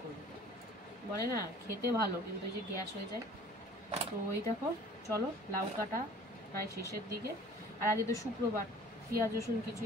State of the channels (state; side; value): normal; both; correlation 0.48